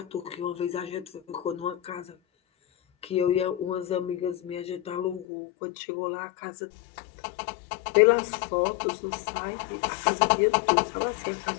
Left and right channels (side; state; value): right; drops out; at 5.2 s